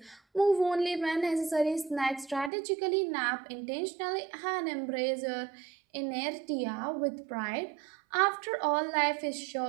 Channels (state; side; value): drops out; left; at 2.5 s